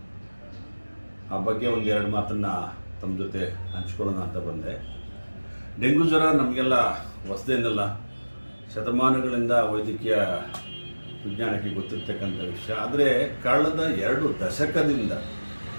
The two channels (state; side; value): inverted; both; correlation -1.00